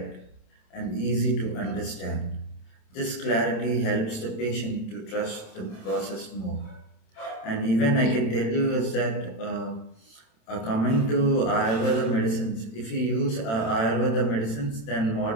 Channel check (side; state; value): right; late; 27 ms